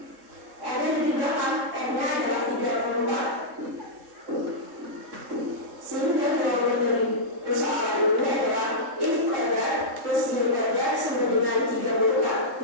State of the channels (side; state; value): left; late; 3.7 ms